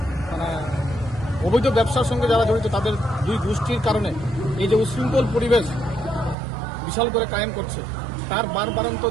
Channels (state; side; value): drops out; left; at 6.4 s